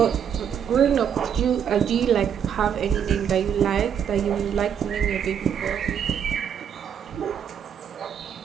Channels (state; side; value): quieter; left; 8.3 dB